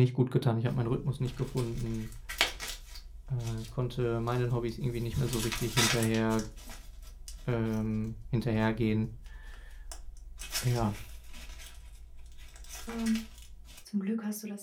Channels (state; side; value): identical; both; correlation 1.00